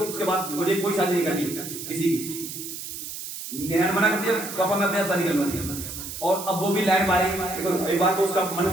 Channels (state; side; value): noise; right; hiss, 9 dB below the sound